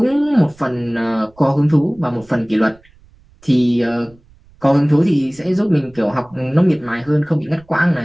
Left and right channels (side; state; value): right; noise; rumble, 29 dB below the sound